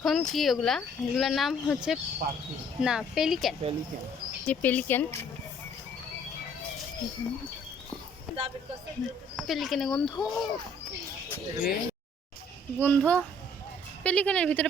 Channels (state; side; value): normal; both; correlation 0.60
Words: কি ওগুলা, এগুলার নাম হচ্ছে না পেলিক্যান, যে পেলিক্যান। পেলিক্যানে গন্ধ গন্ধ, পেলিক্যানের ভিতরে